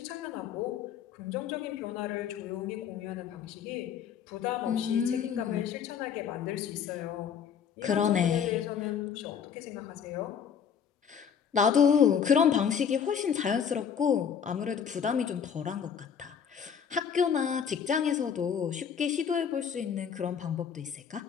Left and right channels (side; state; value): right; quieter; 7.5 dB